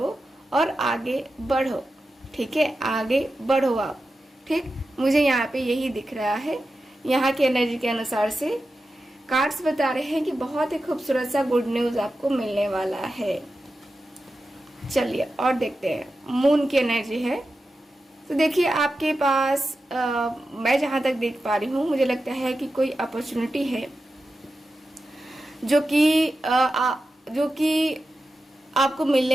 और आगे बढ़ो। ठीक है, आगे बढ़ो आप। ठीक, मुझे यहाँ पे यही दिख रहा है। यहाँ के एनर्जी के अनुसार से कार्ड्स बता रहे हैं कि बहुत ही खूबसूरत सा गुड न्यूज़ आपको मिलने वाला है। चलिए और देखते हैं। मून की एनर्जी है, तो देखिए आपके पास मैं जहाँ तक देख पा रही हूँ मुझे लगता है कि कोई अपॉर्चुनिटी है जो कि आपको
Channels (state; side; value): normal; both; correlation 0.91